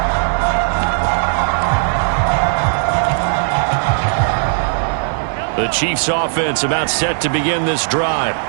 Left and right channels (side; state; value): left; silent; 58 dB below the other